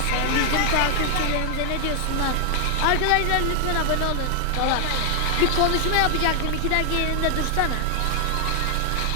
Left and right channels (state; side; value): different; both; correlation 0.01